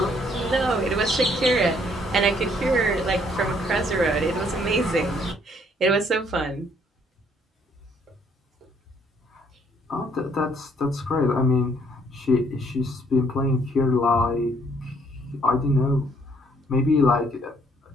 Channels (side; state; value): both; normal; correlation 0.66